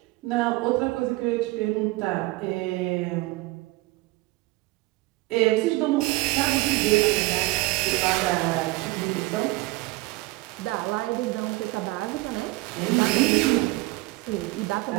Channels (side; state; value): left; quieter; 21.2 dB